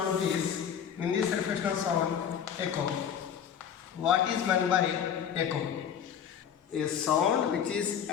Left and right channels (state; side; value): quieter; right; 8.5 dB